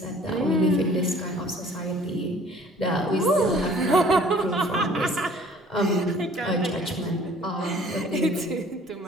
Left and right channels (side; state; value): both; normal; correlation 0.54